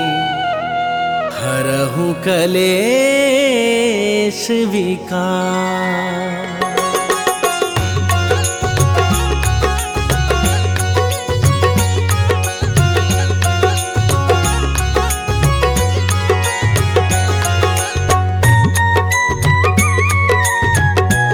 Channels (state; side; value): identical; both; correlation 1.00